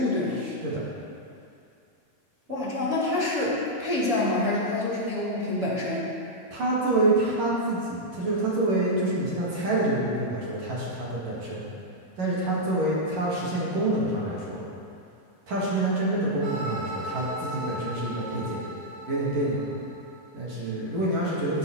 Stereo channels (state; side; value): late; left; 11 ms